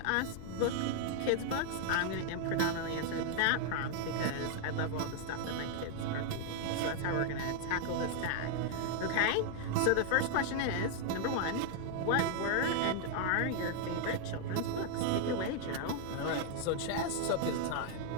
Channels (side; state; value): both; different; correlation 0.00